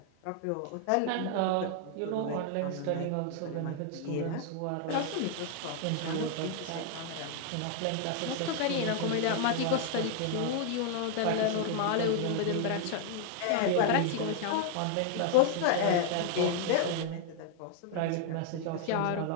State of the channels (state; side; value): different; both; correlation 0.00